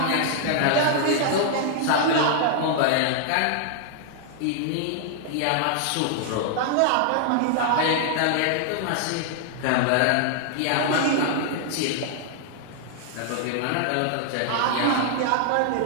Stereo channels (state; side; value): different; both; correlation 0.00